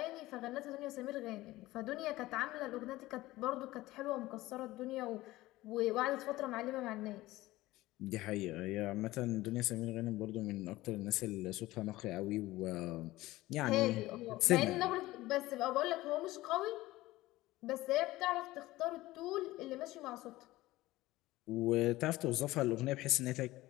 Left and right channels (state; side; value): quieter; right; 17.9 dB